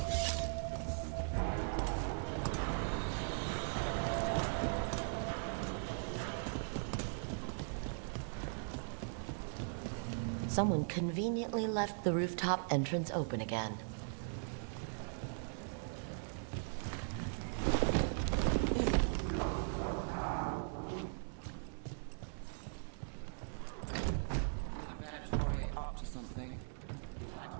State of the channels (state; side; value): silent; left; digital silence